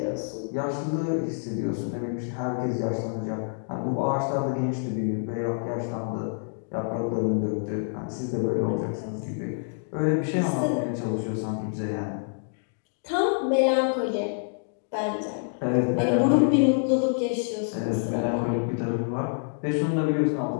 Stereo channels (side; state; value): right; silent; digital silence